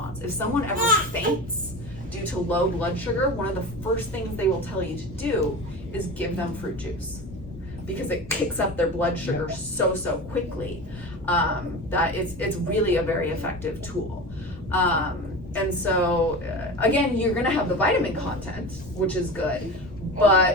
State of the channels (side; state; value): left; noise; rumble, 19 dB below the sound